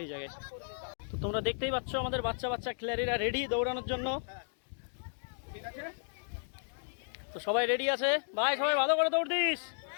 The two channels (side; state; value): right; silent; digital silence